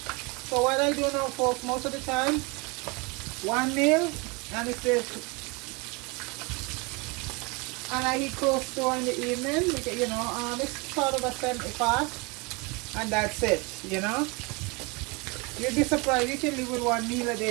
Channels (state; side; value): quieter; left; 28.5 dB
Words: So what I do now, folks, most of the time, 1 meal, and it's this. And I eat close to in the evening, because, you know, it's sort of a 70 fast, and that's it, you know. You'd be surprised, you can live with 1 meal a